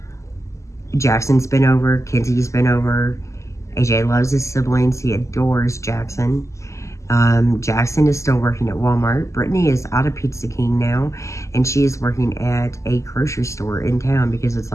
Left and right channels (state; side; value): late; right; 0.14 ms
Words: Jackson's been over, Kenzie's been over. AJ loves his siblings. He adores Jackson. Jackson is still working at Walmart. Brittany is out of Pizza King now, and she is working at a grocery store in town because it's